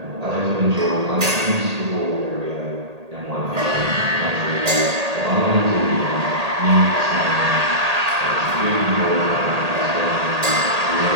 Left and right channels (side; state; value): left; late; 1.8 ms